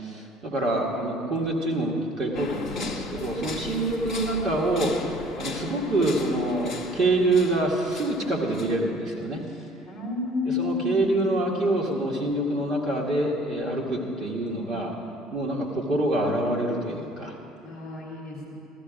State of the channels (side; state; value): both; normal; correlation 0.54